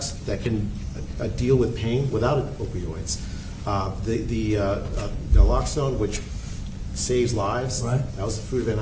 that can deal with pain without opioids. The naloxone, which saves lives, right. That was the fruit of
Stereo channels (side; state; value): both; identical; correlation 1.00